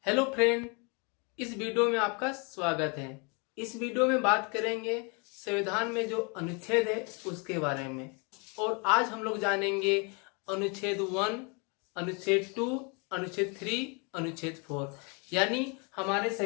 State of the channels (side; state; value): right; quieter; 33.0 dB